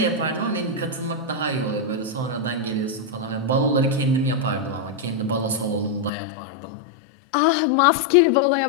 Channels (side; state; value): right; drops out; at 6.1 s